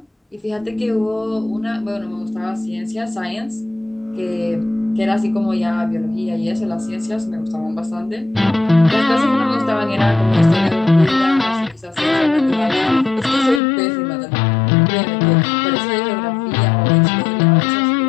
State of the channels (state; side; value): drops out; right; at 13.6 s